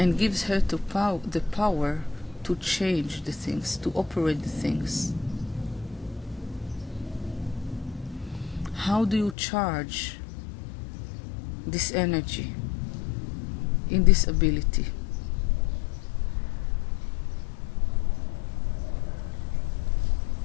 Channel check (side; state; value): right; drops out; at 9.3 s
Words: gives her the power to change the things, to operate the things. How do you charge this energy in this ability?